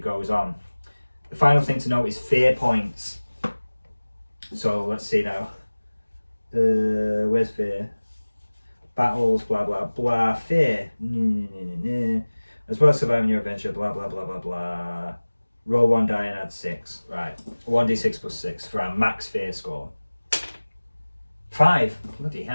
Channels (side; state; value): both; inverted; correlation -1.00